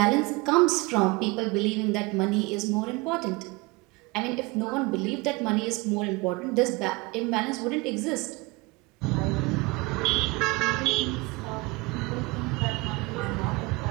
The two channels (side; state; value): left; quieter; 24.7 dB